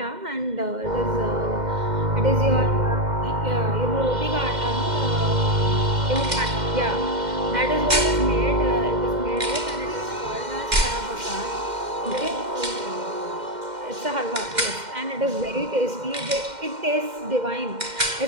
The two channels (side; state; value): left; late; 2.1 ms